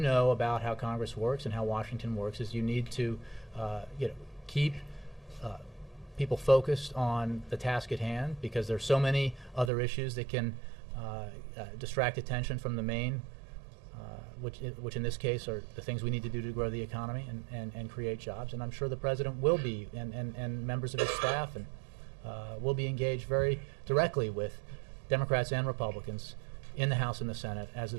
about how Congress works and how Washington works is you need to, keep people focused on the task at hand, because there's so many other issues that can distract attention from the main, which in this case are the things we need to do to grow the economy and create jobs. And I'm sure the president will be, and members of his staff, and will be engaged very directly with Democrats and Republicans in the House and the Senate as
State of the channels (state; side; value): drops out; left; at 9.7 s